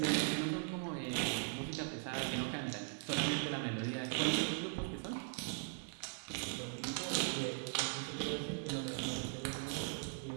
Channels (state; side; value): silent; left; 51 dB below the other